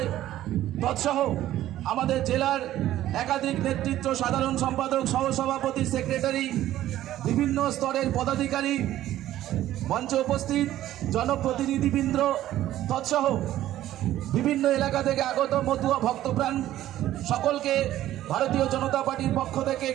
তৎসহ আমাদের জেলার একাধিক নেতৃত্ব, সাধারণ সম্পাদক, সহসভাপতি, সেক্রেটারি, বিভিন্ন স্তরের পদাধিকারী, মঞ্চে উপস্থিত জনপ্রতিনিধিবৃন্দ তৎসহ বিভিন্ন এলাকা থেকে আগত মতুয়া ভক্তপ্রাণ সকলকে ভারতীয় জনতা পার্টির পক্ষ থেকে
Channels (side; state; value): left; quieter; 13.6 dB